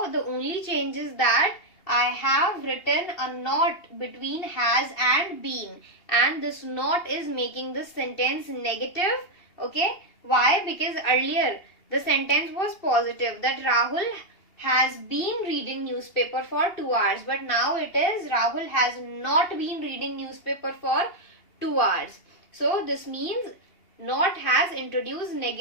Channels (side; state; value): right; late; 2.8 ms